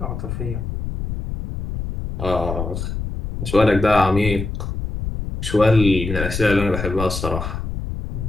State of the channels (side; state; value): left; noise; rumble, 5 dB below the sound